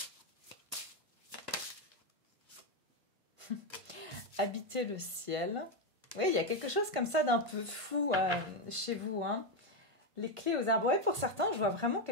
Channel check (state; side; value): late; left; 1.5 ms